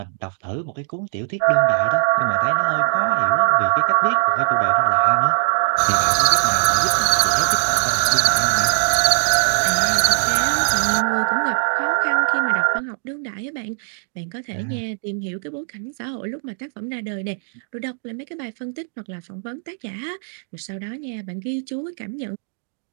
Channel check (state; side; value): silent; left; digital silence